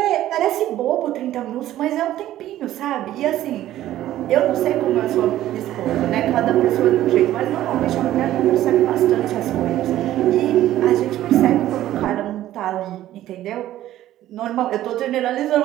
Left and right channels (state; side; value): quieter; left; 13.6 dB